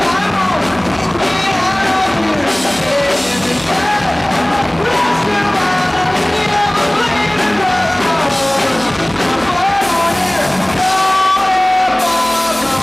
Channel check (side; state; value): left; noise; hum, 25 dB below the sound